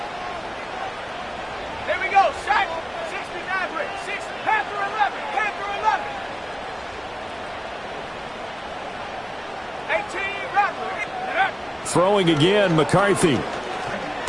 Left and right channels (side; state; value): both; identical; correlation 1.00